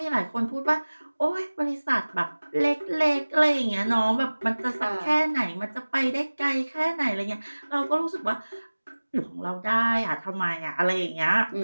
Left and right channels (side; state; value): both; inverted; correlation -1.00